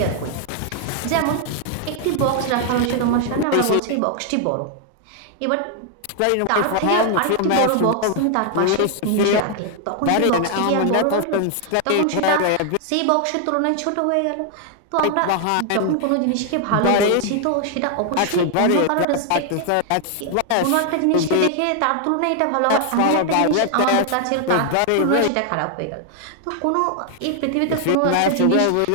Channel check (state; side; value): different; both; correlation 0.00